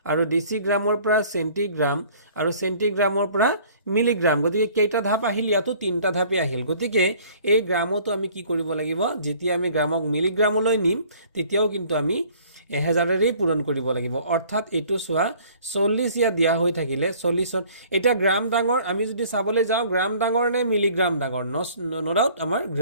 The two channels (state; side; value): inverted; both; correlation -0.54